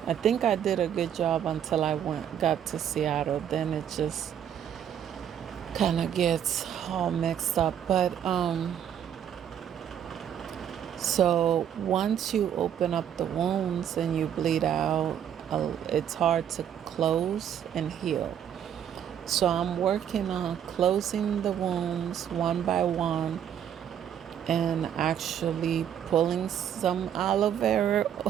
I think I did a good job until I got to Seattle. Then it just kind of gets all mixed up. But so once you open up the wounds and you bleed out, it's hard to close and heal. So I'm working on closing the wounds one by one, and actually pulling some aloe vera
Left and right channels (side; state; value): left; quieter; 9.4 dB